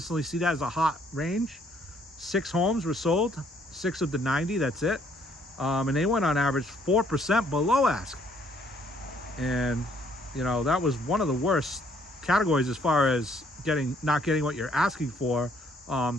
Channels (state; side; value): normal; both; correlation 0.65